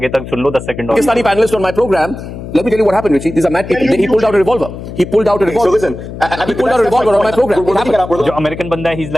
तक सुन लो 10 सेकंड और। Pakistani panelist on my program. Let me tell you what happened, Richie. These are mad people. He pulled out a revolver. He pulled out a So revolver. listen, He pulled out a revolver on my program. We're looking at we're जो American बंदा है, he's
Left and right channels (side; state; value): left; noise; hum, 11 dB below the sound